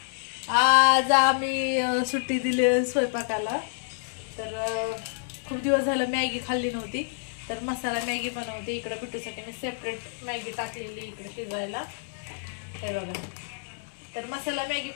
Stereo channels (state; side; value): silent; right; digital silence